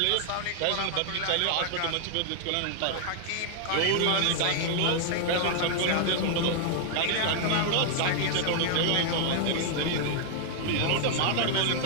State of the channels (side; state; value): both; different; correlation -0.01